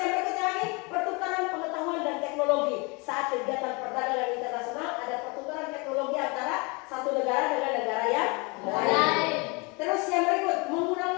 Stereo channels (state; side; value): quieter; right; 29.2 dB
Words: berikutnya lagi, pertukaran pengetahuan dan teknologi. Saat kegiatan perdagangan internasional ada pertukaran teknologi antara satu negara dengan negara yang lain. Terus yang berikut,